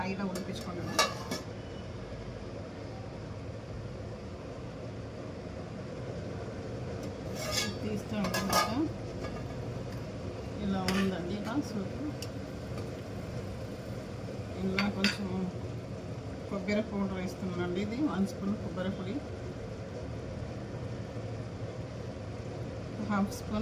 హైలో ఉడికించుకోండి. తీస్తూ ఉంటున్నాక ఇలా ఉందండి. ఇలా సూప్ ఇలా కొంచెం కొబ్బరి పౌడర్ వేస్తున్నానండి. ఇది 1 స్పూన్ కొబ్బరి పొడి, 1/2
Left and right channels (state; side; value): identical; both; correlation 1.00